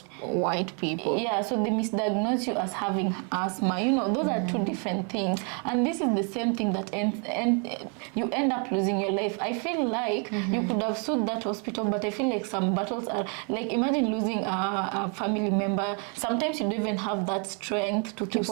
white people. Yeah, so they misdiagnose you as having asthma. You know, those are two different things, and this is the same thing that you end up losing your life. I feel like you could have sued that hospital, but I feel like some battles are like, imagine losing a family member. Sometimes you don't even have that strength to keep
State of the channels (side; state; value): left; quieter; 38.3 dB